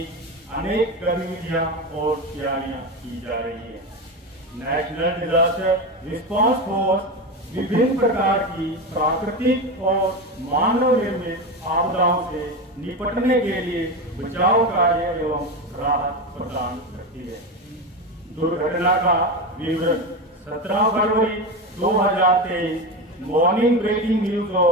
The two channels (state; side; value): normal; both; correlation 0.19